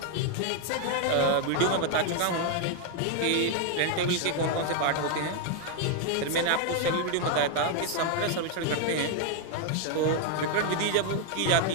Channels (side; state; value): both; different; correlation 0.01